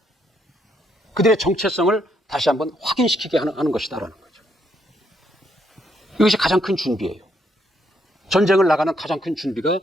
그들의 정체성을 다시 한번 확인시키게 하는 것이다라는 거죠. 이것이 가장 큰 준비예요. 전쟁을 나가는 가장 큰 준비가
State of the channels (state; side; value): normal; both; correlation 0.74